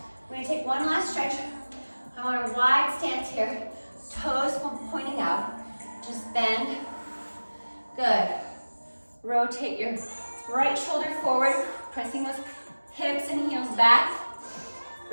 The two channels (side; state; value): both; inverted; correlation -1.00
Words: we're gonna take one last stretch. I want a wide stance here, toes pointing out. Just bend. Good. Rotate your right shoulder forward, pressing those hips and heels back.